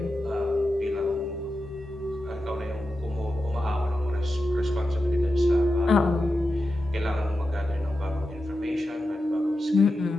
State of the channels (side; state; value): both; normal; correlation 0.90